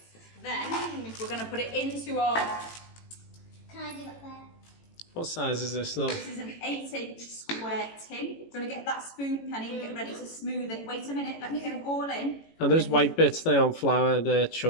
Then we're going to put it into our... Can I do that there? What size is this now? This is an 8-inch square tin. You're going to get that spoon, Penny, and get ready to smooth it. Wait a minute, let me get it all in. And those white bits, they aren't flour, they're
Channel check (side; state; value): right; late; 18 ms